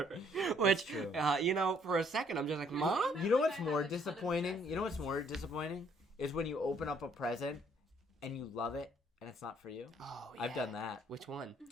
which, for a second I'm just like, Mom? You know what's more disappointing? Is when you open up a present and you love it and it's not for you. Oh, yeah. I've done that. Which one?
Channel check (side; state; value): both; normal; correlation 0.64